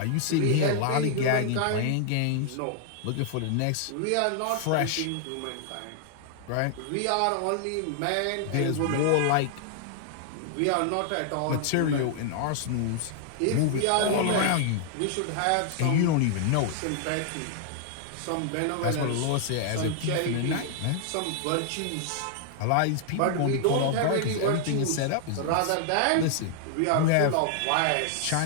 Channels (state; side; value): different; both; correlation 0.00